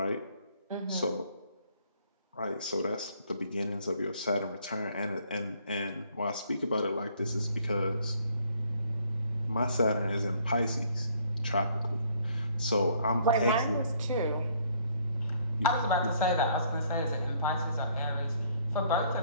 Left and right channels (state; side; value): inverted; both; correlation -0.63